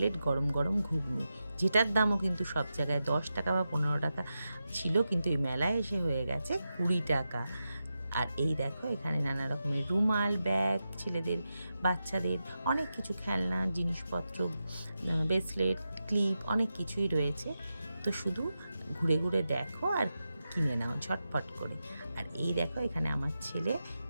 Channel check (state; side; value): inverted; both; correlation -0.90